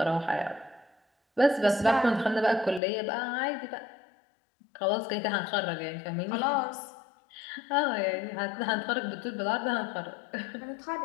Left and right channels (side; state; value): right; drops out; at 2.8 s